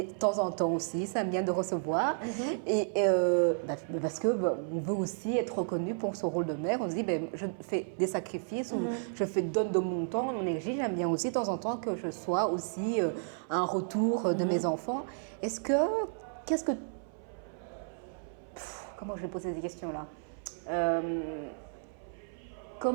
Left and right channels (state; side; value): silent; left; 56 dB below the other